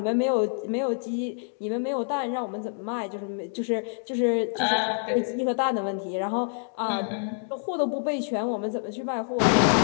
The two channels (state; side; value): silent; right; digital silence